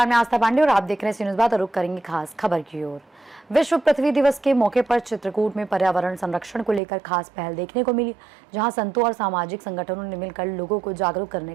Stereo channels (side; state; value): left; drops out; at 6.8 s